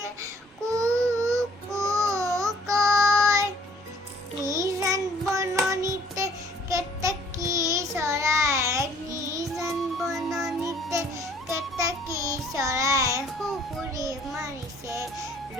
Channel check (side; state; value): both; normal; correlation 0.58